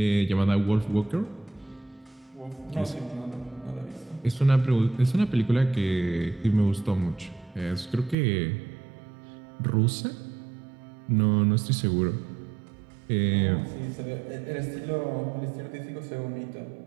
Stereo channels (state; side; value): drops out; left; at 8.2 s